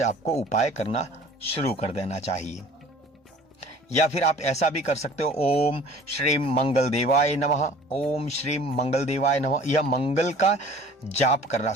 आपको उपाय करना शुरू कर देना चाहिए। या फिर आप ऐसा भी कर सकते हो, ओम श्री मंगल देवाय नमः, ओम श्री मंगल देवाय नमः, यह मंगल का जाप करना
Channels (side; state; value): both; normal; correlation 0.48